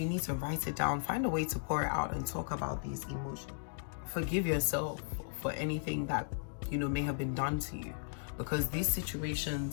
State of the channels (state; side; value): silent; right; digital silence